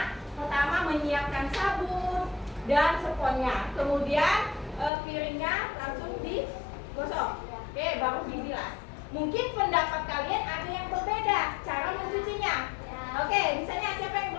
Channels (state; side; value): drops out; right; at 4.9 s